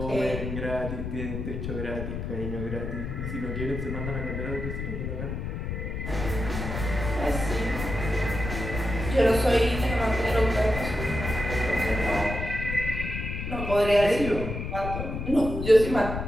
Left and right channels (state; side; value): noise; left; rumble, 5 dB below the sound